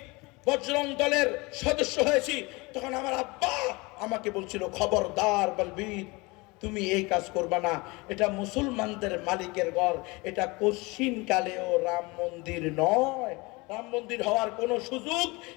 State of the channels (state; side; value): quieter; right; 24.9 dB